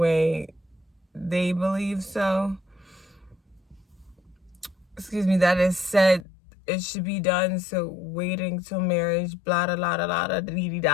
they believe so, that is said it should be done, so waiting till marriage, blah, blah, blah, blah, blah, dee,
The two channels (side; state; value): right; drops out; at 6.2 s